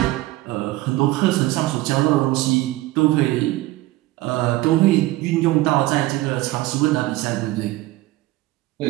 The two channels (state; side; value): quieter; left; 17.9 dB